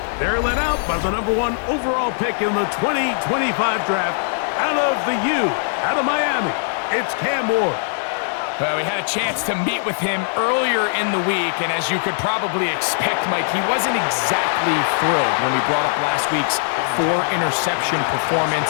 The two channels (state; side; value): silent; right; digital silence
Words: They're led out by the #1 overall pick in the 2025 draft out of the U, out of Miami. It's Cam Ward. Well, we had a chance to meet with him earlier in the week, and as you could probably expect, Mike, he wasn't exactly thrilled when we brought up last week's 4-interception